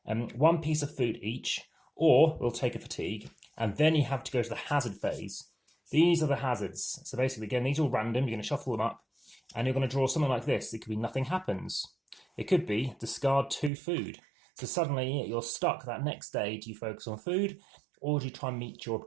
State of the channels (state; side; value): drops out; left; at 13.7 s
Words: one piece of food each, or we'll take a fatigue, and then you have to go to the hazard phase. These are the hazards. So basically, again, these are all random. You're going to shuffle them up, and you're going to draw something like this. It could be nothing happens. It could be discard 2 food. So suddenly you're stuck that next day. Do you focus on food, or do you try and meet your